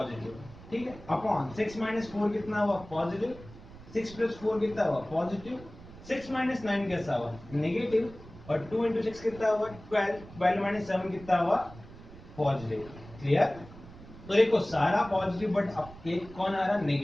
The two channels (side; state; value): right; noise; rumble, 18 dB below the sound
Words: ठीक है, अपॉन 6 माइनस 4 कितना हुआ पॉजिटिव, 6 प्लस 4 कितना हुआ पॉजिटिव, 6 माइनस 9 कैसा हुआ नेगेटिव, और 2 इंटू 6 कितना हुआ 12, 12 माइनस 7 कितना हुआ पॉजिटिव। क्लियर। तो देखो सारा पॉजिटिव बट अब एक कौन आ रहा